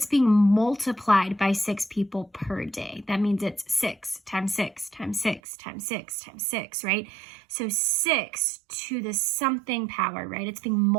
being multiplied by 6 people per day. That means it's 6 times 6 times 6 times 6 times 6, right? So 6 to the something power, right? It's being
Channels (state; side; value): drops out; left; at 5.4 s